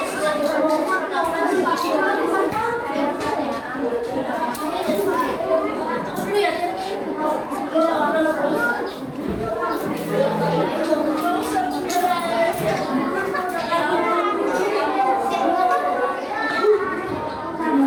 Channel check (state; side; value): identical; both; correlation 1.00